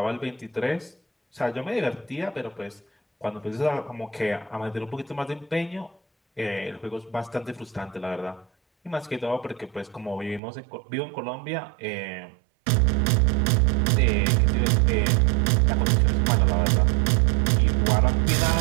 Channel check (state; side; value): drops out; left; at 10.4 s